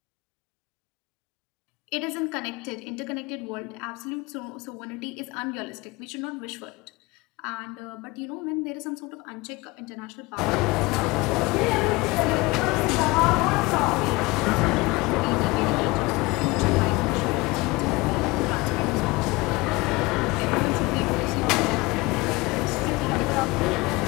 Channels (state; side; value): quieter; right; 23.0 dB